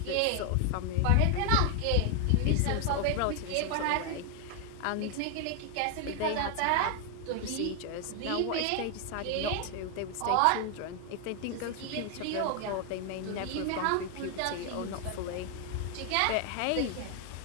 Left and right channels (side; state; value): both; different; correlation 0.00